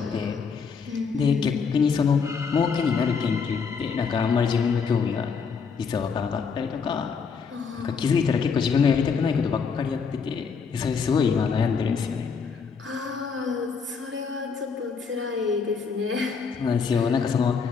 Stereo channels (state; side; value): quieter; right; 5.7 dB